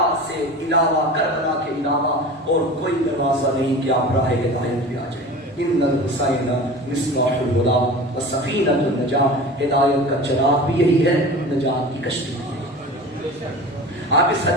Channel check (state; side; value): normal; both; correlation 0.35